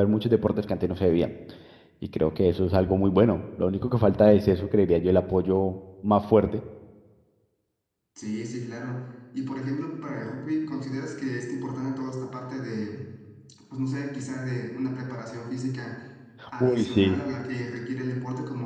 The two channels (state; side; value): identical; both; correlation 1.00